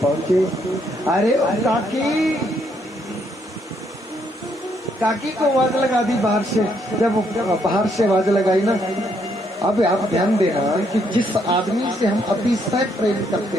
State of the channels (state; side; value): normal; both; correlation 0.72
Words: पहुंचे। अरे काकी, काकी को आवाज लगा दी बाहर से। जब बाहर से आवाज लगाई ना, अब आप ध्यान देना कि जिस आदमी से हम अतिशय प्रेम करते